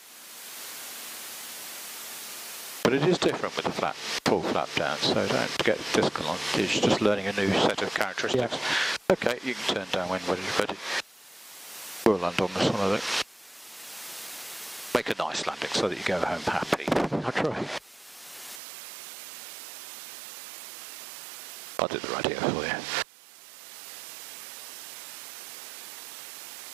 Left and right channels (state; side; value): drops out; left; at 18.6 s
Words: But it is different with the full flap down, so don't get disconnected. It's just learning a new set of characteristics. Yeah. Okay, you can turn down when ready. We'll land on this one, I think. Make a nice landing so that you go home happy. I'll try. I'll do the radio for you.